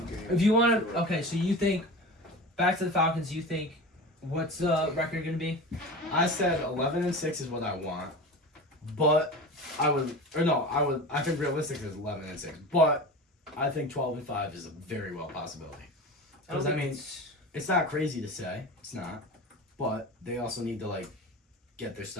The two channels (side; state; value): both; normal; correlation 0.31